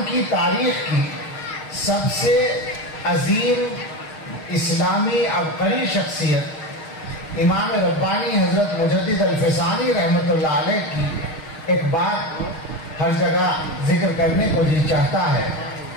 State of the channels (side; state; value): right; late; 6.5 ms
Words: کی تاریخ کی سب سے عظیم اسلامی عبقری شخصیت امام ربانی حضرت مجدد الفسانی رحمۃ اللہ علیہ کی ایک بات ہر جگہ ذکر کرنے کو جی چاہتا ہے۔